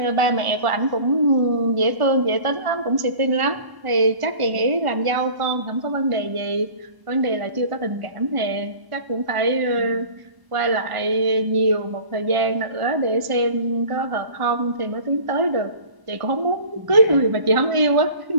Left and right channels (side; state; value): left; late; 1.0 ms